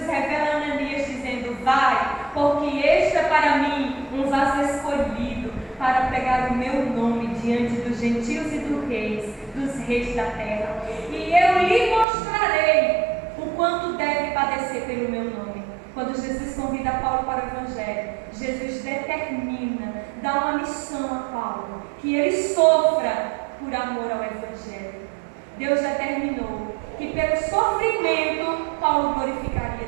revela a Ananias dizendo: Vai, porque este é para mim um vaso escolhido para pregar o meu nome diante dos gentios e dos reis da terra. E eu lhe mostrarei o quanto deve padecer pelo meu nome. Quando Jesus convida Paulo para o Evangelho, Jesus determina, dá uma missão a Paulo, que ele sofra por amor ao Evangelho. Deus determinou que pelo sofrimento Paulo glorificaria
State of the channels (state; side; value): drops out; left; at 12.1 s